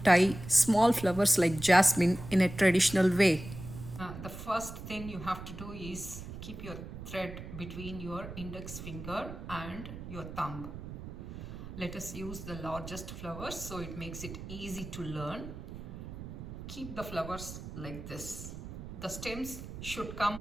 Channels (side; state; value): right; noise; rumble, 10 dB below the sound